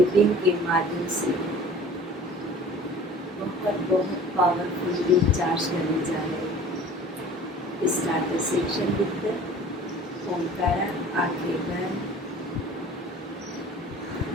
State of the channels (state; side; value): normal; both; correlation 0.45